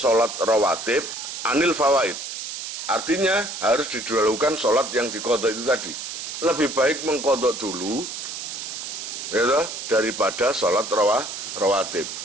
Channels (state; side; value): noise; right; hiss, 7 dB below the sound